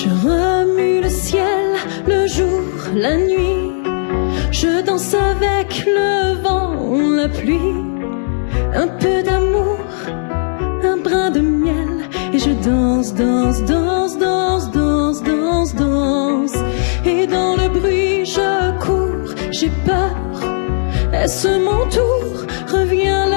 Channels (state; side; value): silent; right; digital silence